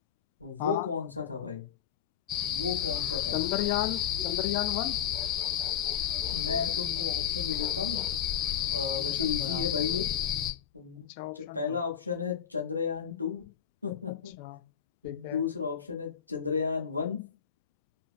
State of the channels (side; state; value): right; quieter; 8.7 dB